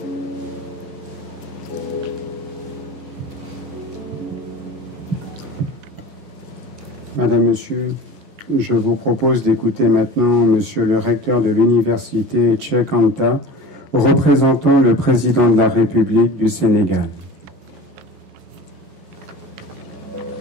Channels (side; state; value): both; normal; correlation 0.37